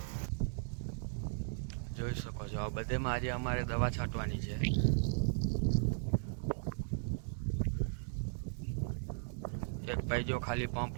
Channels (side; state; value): left; silent; digital silence